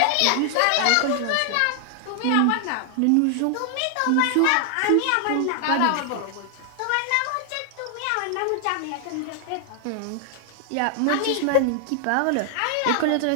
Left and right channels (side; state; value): both; different; correlation 0.00